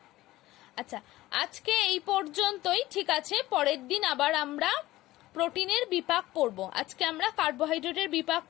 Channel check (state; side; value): quieter; right; 17.0 dB